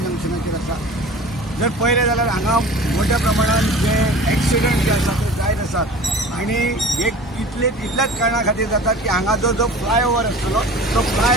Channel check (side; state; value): both; normal; correlation 0.40